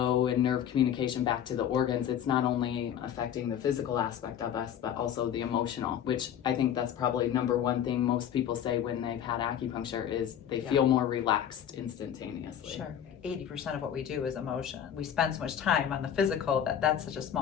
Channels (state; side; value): quieter; right; 9.6 dB